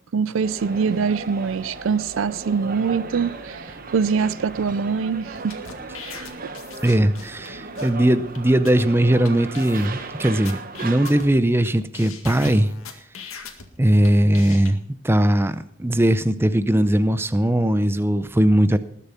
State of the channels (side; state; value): both; normal; correlation 0.82